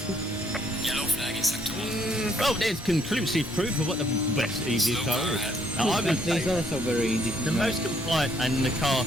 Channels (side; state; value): both; normal; correlation 0.68